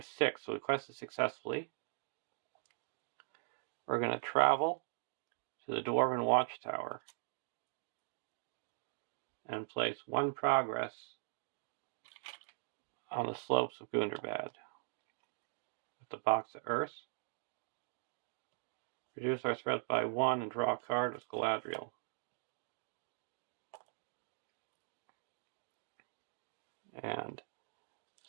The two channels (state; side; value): silent; left; digital silence